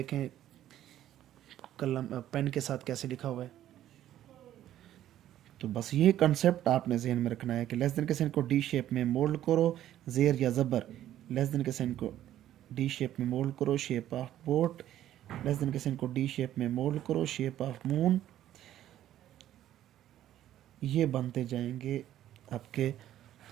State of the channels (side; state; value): left; quieter; 12.3 dB